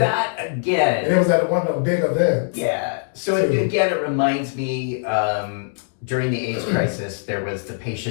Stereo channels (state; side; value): silent; right; digital silence